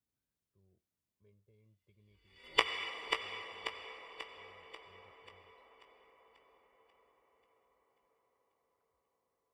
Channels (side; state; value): both; identical; correlation 1.00